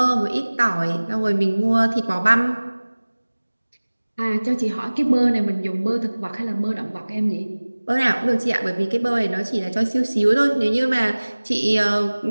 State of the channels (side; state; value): both; inverted; correlation -1.00